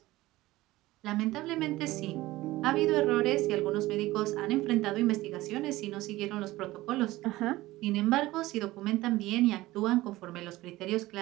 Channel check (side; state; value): left; quieter; 17.9 dB